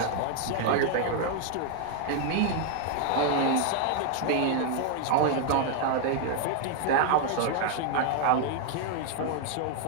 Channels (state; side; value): different; both; correlation 0.00